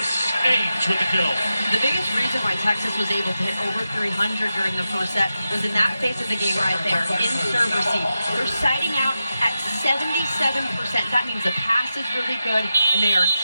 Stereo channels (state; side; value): inverted; both; correlation -0.90